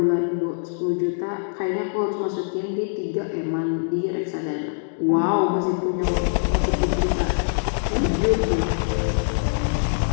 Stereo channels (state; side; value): silent; right; digital silence